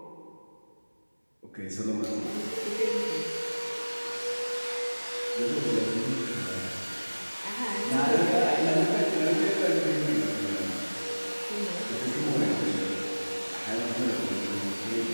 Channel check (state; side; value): inverted; both; correlation -1.00